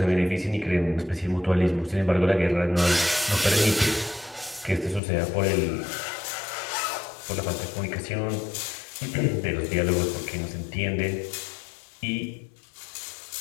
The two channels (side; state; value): right; drops out; at 5.0 s